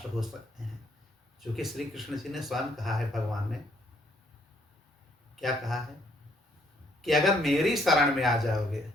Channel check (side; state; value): both; normal; correlation 0.68